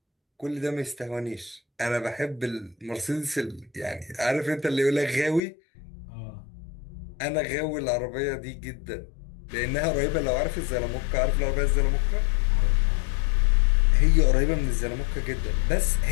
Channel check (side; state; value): right; drops out; at 5.4 s